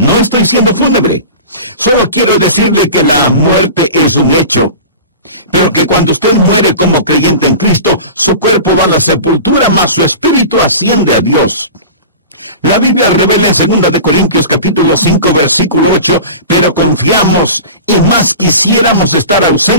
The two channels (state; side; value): inverted; both; correlation -0.35